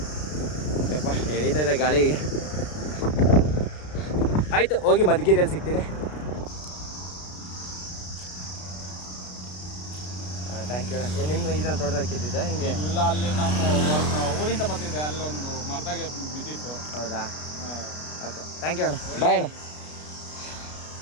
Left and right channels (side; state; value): right; late; 33 ms